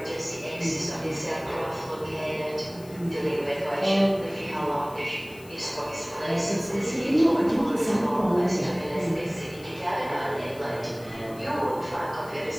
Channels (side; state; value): left; noise; hiss, 22 dB below the sound